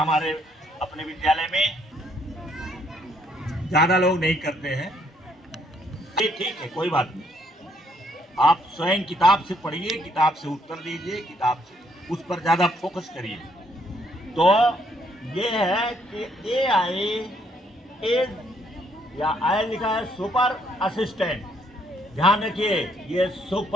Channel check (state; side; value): normal; both; correlation 0.69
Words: अपने विद्यालय में? ज्यादा लोग नहीं करते हैं। ये ठीक है, कोई बात नहीं। आप स्वयं किताब से पढ़िए, किताब से उत्तर दीजिए, किताब से उस पर ज्यादा फोकस करिए। तो ये है कि AI इज, या आई लिखा है सुपर असिस्टेंट। ध्यान रखिए, ये